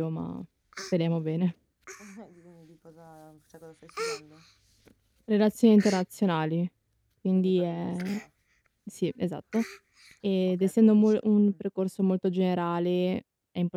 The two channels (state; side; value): identical; both; correlation 1.00